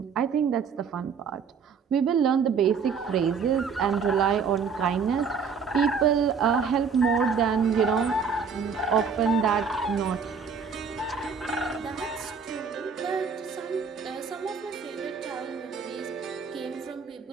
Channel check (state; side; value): quieter; left; 5.9 dB